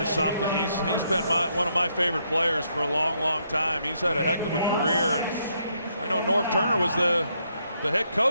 something. He's been one of my favorite players for a long time. He's had a heck of a career, and I know Norv Turner was the head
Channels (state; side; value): inverted; both; correlation -0.75